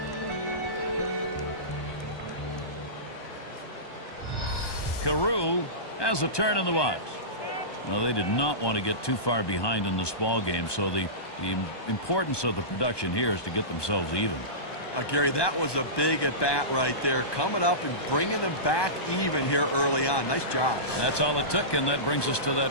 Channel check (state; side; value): late; right; 1.2 ms